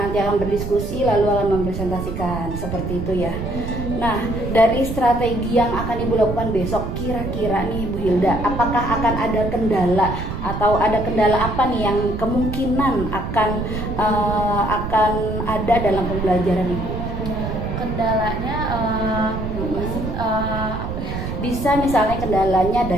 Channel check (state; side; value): noise; right; rumble, 5 dB below the sound